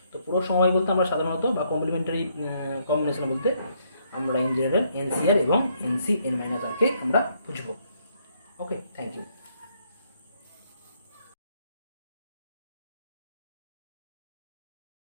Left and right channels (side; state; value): both; inverted; correlation -0.71